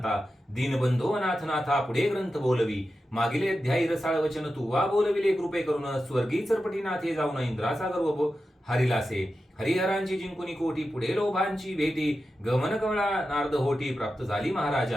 दीनबंधो अनाथनाथा पुढे ग्रंथ बोलवी. मागिले अध्यायी रसाळ वचन तू वा बोलविले कृपे करून स्वर्गी चरपटीनाथे जाऊन इंद्राचा गर्व हरिलासे. हरिहरांची जिंकुनी कोटी पुढे लोभांची भेटी गमन कमळा नारद होटी प्राप्त झाली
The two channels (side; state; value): both; normal; correlation 0.91